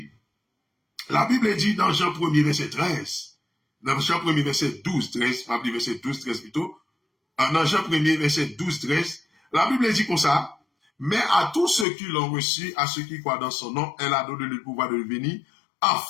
dans Jean 1er, verset 13, dans Jean 1er, verset 12, 13, pas verset 12, 13 plutôt, dans Jean 1er, verset 12, 13, la Bible dit comme ça, mais à tous ceux qui l'ont reçu, à ceux qui croient dans son nom, elle a donné le pouvoir de devenir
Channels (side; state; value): right; drops out; at 11.9 s